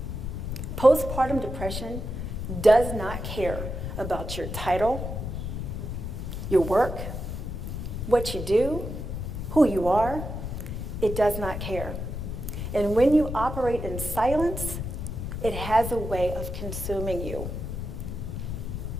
Postpartum depression does not care about your title, your work, what you do, who you are. It does not care. And when you operate in silence, it has a way of consuming you.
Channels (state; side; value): noise; left; rumble, 5 dB below the sound